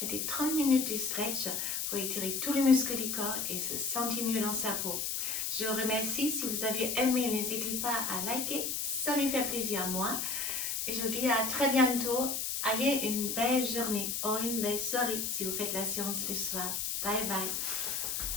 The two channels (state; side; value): noise; left; hiss, 1 dB below the sound